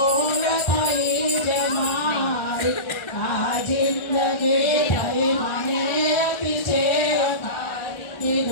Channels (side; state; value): right; late; 1.4 ms